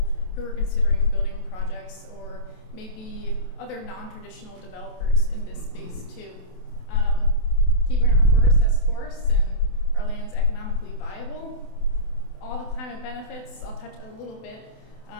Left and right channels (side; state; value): right; late; 28 ms